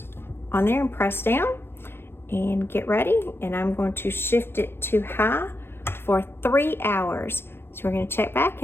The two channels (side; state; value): right; late; 0.11 ms